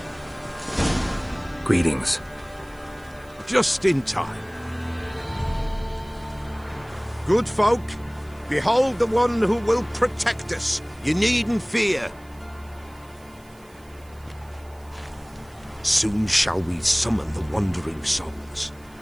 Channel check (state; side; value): noise; right; hiss, 29 dB below the sound